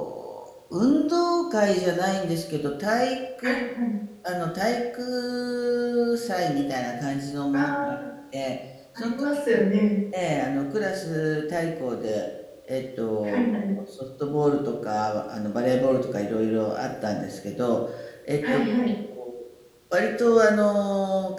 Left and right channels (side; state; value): both; identical; correlation 1.00